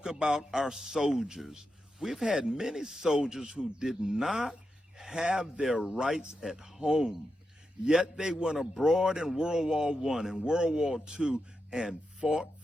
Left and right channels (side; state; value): both; normal; correlation 0.88